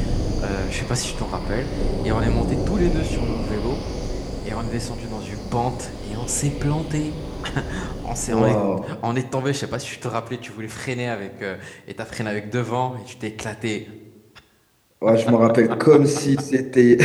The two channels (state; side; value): identical; both; correlation 1.00